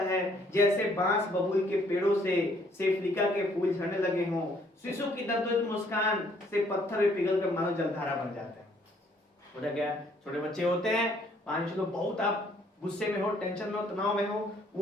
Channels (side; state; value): both; normal; correlation 0.64